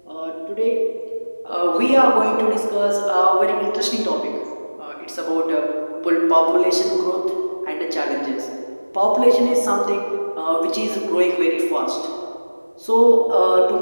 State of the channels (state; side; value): inverted; both; correlation -1.00